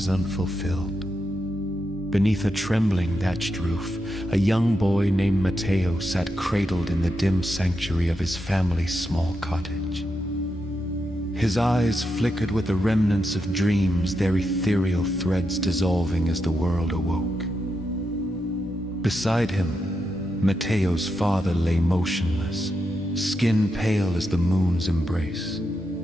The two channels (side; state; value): both; normal; correlation 0.85